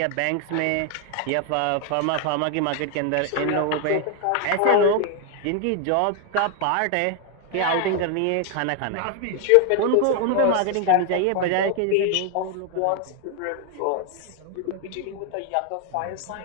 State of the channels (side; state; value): both; different; correlation 0.01